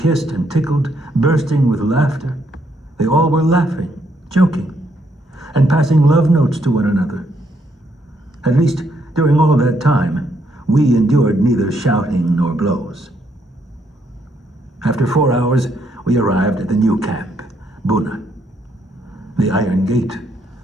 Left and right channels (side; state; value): both; normal; correlation 0.73